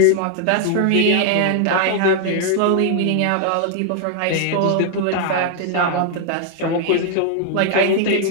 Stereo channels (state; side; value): different; both; correlation 0.00